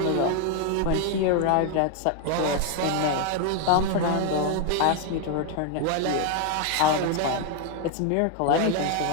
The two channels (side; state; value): both; different; correlation 0.01